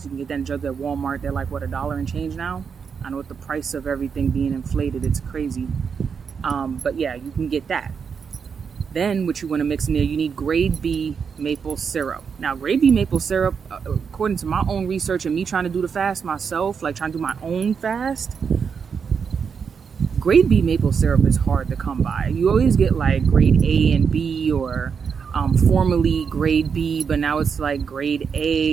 You can get that in jugs at Walmart. They're like, what, $1 and change now? I know with the price of everything being inflated, it's crazy. But yeah, you can get that. Then what you want to mix in there, you need grade B maple syrup. Now, grade B maple syrup, according to my own research and me trying to do the fast myself, like trying to do my own fast, grade B maple syrup is hard to come by. You always get like grade A and B, or formerly grade B, but now it's like grade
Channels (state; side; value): quieter; left; 6.3 dB